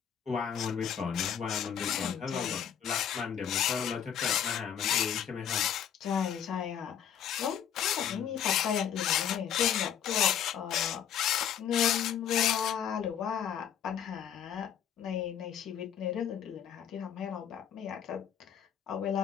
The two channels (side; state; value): right; quieter; 9.0 dB